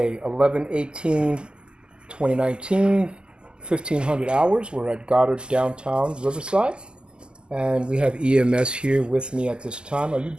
11/18/2019, 1500 hours. We're at Goddard, downtown Riverside. And we have EMS here with me at this time. Are you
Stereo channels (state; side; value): late; left; 0.048 ms